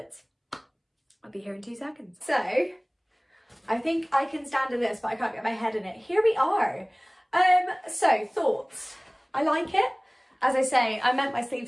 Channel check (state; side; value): identical; both; correlation 1.00